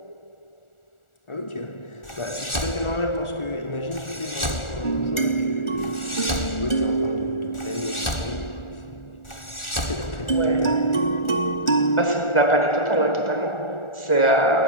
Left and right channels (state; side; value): late; right; 1.4 ms